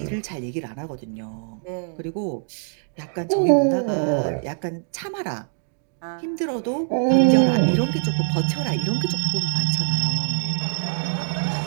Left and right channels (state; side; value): silent; left; 55 dB below the other